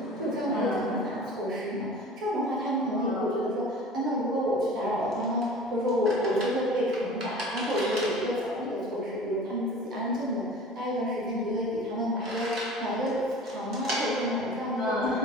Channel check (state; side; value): normal; both; correlation 0.41